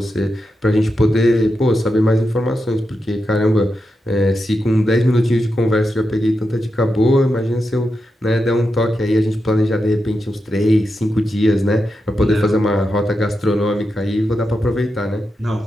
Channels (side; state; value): both; normal; correlation 0.87